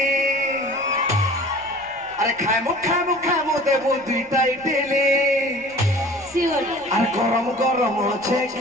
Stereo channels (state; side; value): noise; left; rumble, 28 dB below the sound